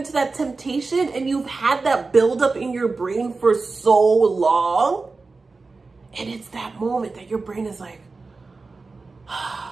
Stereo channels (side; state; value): left; quieter; 3.9 dB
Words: that temptation and you've had that build up in your brain for so long, and it's that moment that your brain is like,